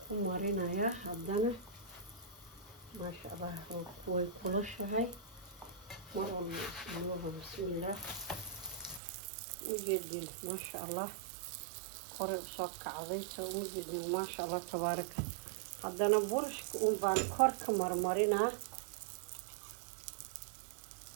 ku marinayaa haddana maasha allah way kulushahay mar walba bismillaah ujeedin maasha allah hore usoo kacday soo ujeedin maasha allah tabaaraka haddana burashka un baan kor ka marmarinaa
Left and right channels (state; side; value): drops out; left; at 9.0 s